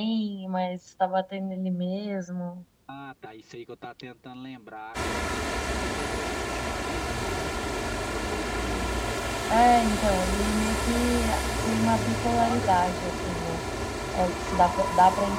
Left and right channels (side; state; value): both; identical; correlation 1.00